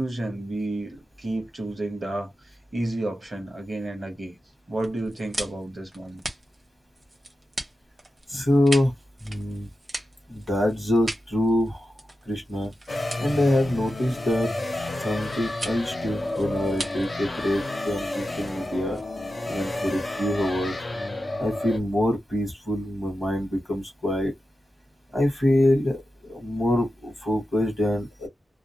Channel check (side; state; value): both; normal; correlation 0.91